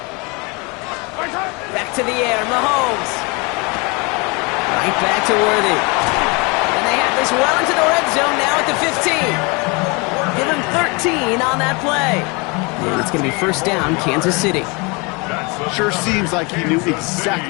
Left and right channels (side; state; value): right; quieter; 29.1 dB